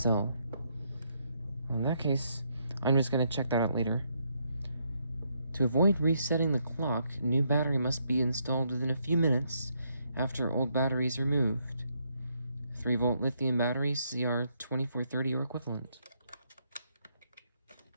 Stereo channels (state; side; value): inverted; both; correlation -0.75